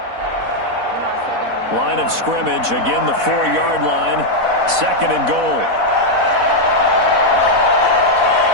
Line of scrimmage, again the 4-yard line. Second and goal.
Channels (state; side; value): late; left; 4.1 ms